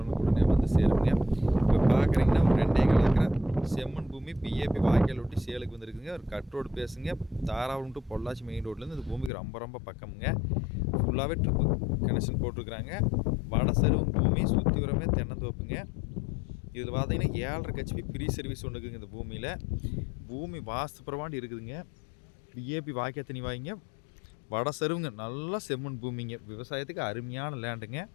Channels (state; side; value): drops out; right; at 9.3 s